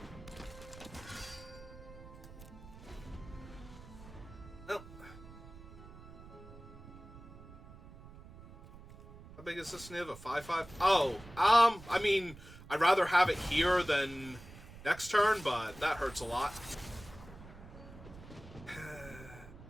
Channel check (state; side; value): noise; right; rumble, 17 dB below the sound